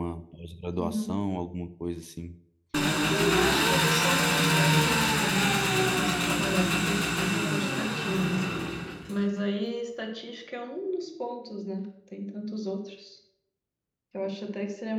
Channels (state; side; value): identical; both; correlation 1.00